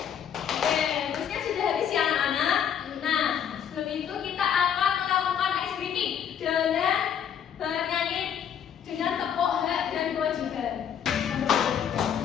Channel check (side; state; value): right; quieter; 8.6 dB